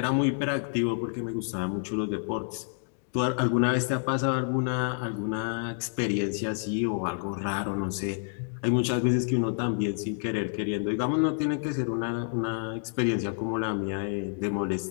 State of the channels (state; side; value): silent; right; 59 dB below the other